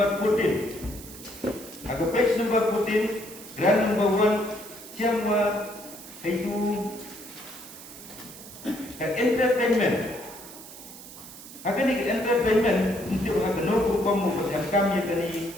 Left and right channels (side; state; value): right; noise; hiss, 16 dB below the sound